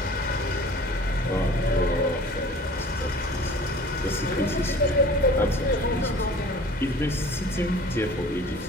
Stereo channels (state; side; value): normal; both; correlation 0.45